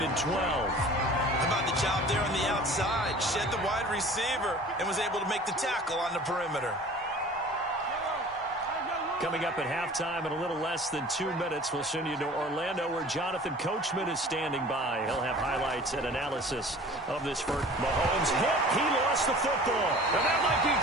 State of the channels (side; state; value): both; normal; correlation 0.44